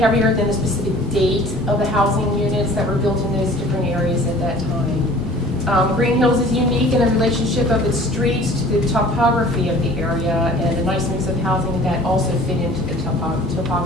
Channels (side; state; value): both; normal; correlation 0.48